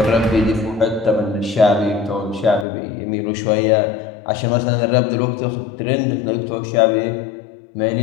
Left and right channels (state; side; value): drops out; right; at 2.7 s